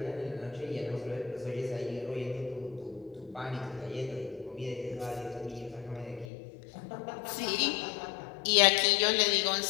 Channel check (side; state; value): right; drops out; at 6.2 s